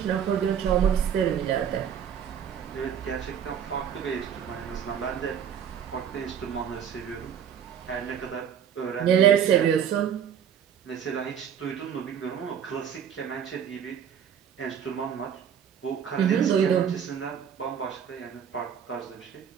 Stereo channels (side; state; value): left; quieter; 8.4 dB